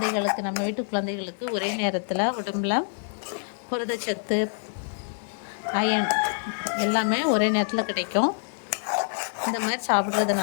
நம்ம வீட்டு குழந்தைகளுக்கு ஒரே நேரத்தில் உடம்புல புரதச்சத்து, அயன் எல்லாமே ஒரே நேரத்தில் கிடைக்கும். இந்த மாதிரி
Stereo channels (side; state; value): right; silent; digital silence